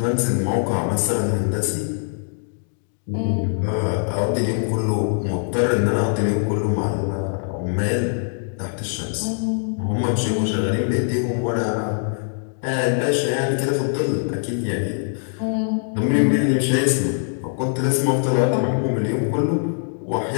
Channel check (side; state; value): right; silent; digital silence